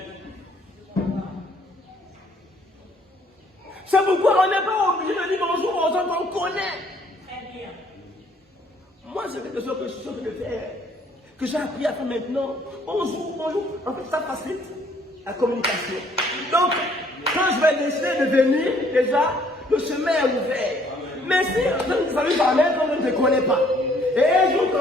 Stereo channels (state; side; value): normal; both; correlation 0.62